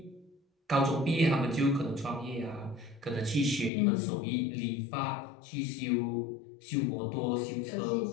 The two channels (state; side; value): drops out; right; at 3.7 s